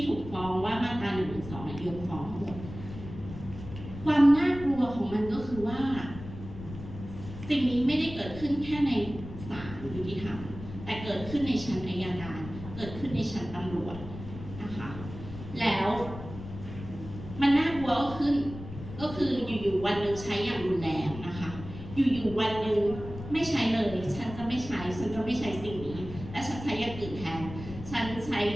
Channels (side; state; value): left; noise; rumble, 12 dB below the sound